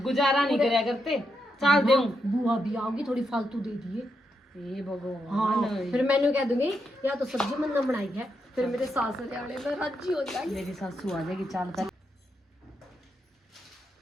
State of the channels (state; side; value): normal; both; correlation 0.82